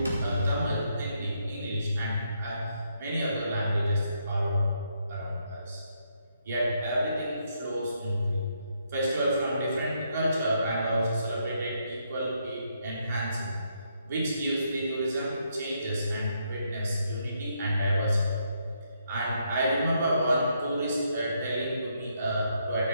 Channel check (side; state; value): both; inverted; correlation -0.76